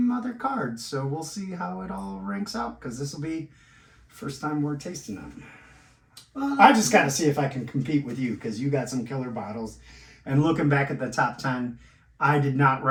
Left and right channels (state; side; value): identical; both; correlation 1.00